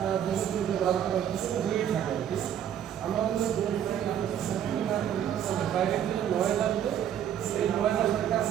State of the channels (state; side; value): quieter; left; 9.8 dB